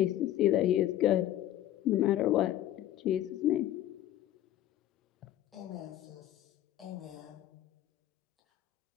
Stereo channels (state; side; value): quieter; right; 13.0 dB